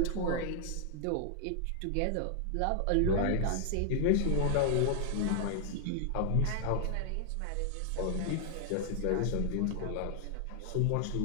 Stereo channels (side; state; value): both; different; correlation 0.00